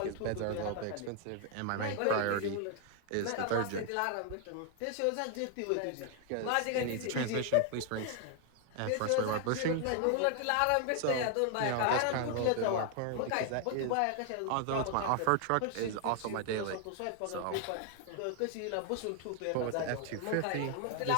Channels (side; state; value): both; different; correlation 0.00